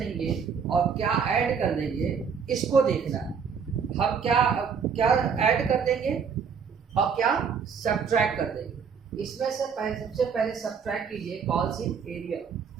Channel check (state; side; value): quieter; left; 6.5 dB